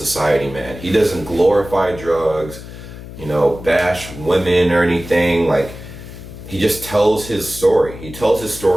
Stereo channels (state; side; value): noise; left; hum, 14 dB below the sound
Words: man. He doesn't glorify drugs, bash women or anything. Like, he just tells his story. He tells his